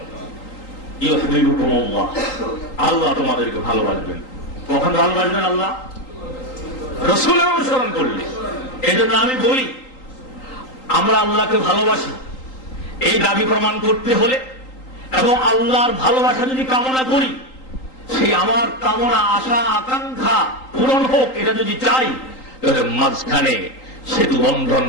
ইউহিব্বুকুমুল্লাহ, আল্লাহ তোমাদেরকে ভালোবাসবেন। কখন ভালোবাসবেন? আল্লাহ রাসূলের অনুসরণ করলে। এই জন্য আমি বলি, আমরা আল্লাহকে ভালোবাসি এই দাবি প্রমাণ করতে হলে এবং আল্লাহর ভালোবাসা যদি কামনা করি, সেই আমার কামনা আশা আকাঙ্ক্ষা পূরণ হোক, এটা যদি চাই, তাহলে মাঝখানে সেতু বন্ধন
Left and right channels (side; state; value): right; late; 3.8 ms